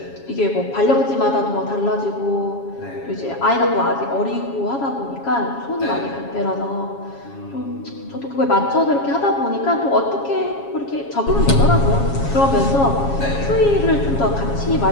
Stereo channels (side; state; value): right; late; 7.3 ms